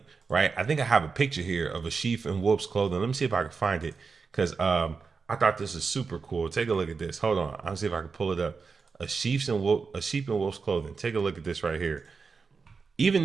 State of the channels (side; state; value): left; quieter; 4.9 dB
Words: right? I think I have a picture here of a sheep in wolf's clothing. Let me see if I can find it, because I thought this was super cool. Take a look at this. Hold on. I'll see if I can pull it up. A sheep in wolf's clothing. Take a look at this right here. Even